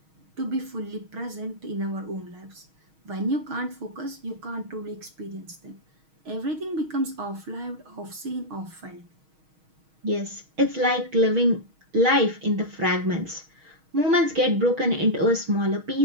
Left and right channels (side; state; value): left; late; 6.4 ms